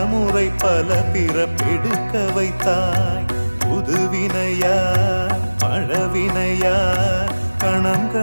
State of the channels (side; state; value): both; inverted; correlation -1.00